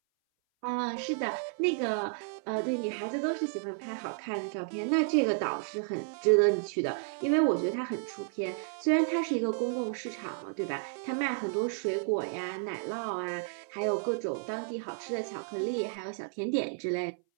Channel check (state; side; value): silent; left; 57 dB below the other